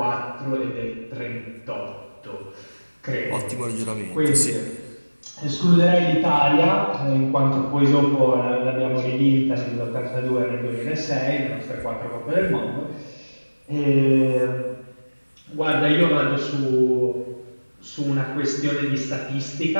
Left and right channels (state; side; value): inverted; both; correlation -1.00